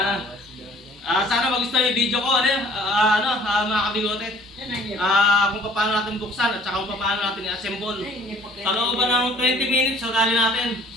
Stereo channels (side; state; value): both; normal; correlation 0.54